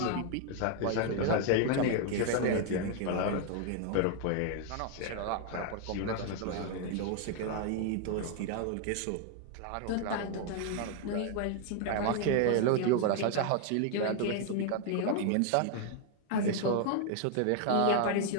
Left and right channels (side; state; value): both; different; correlation 0.00